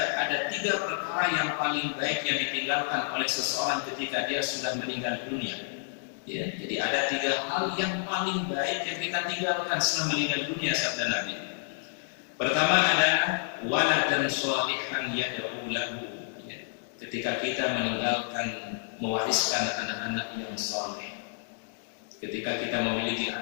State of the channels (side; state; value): right; silent; digital silence